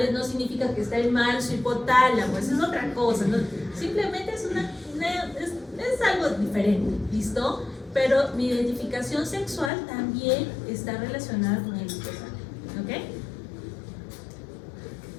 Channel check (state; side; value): drops out; right; at 9.7 s